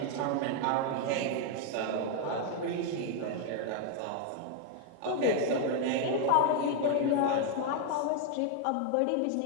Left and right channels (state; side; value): different; both; correlation 0.00